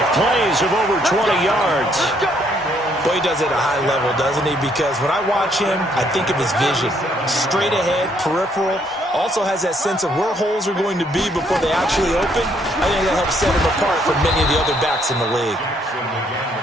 plays of over 20 yards. Boy, he does it at a high level, doesn't he? Because when I watch him, I think of his vision. Straight ahead, peripheral. Also has that sense of where holes are going to be before they actually open. I think that helps set him apart from many of the other backs in the league.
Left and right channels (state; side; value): normal; both; correlation 0.69